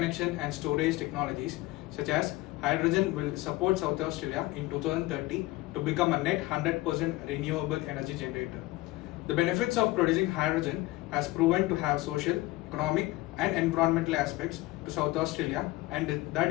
and storage technologies such as hydrogen will support South Australia in 2030 to become a net 100% renewable energy generator. The benefits of producing hydrogen has proven to have social, economic and environmental aspects to South Australia, and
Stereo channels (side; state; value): right; quieter; 19.1 dB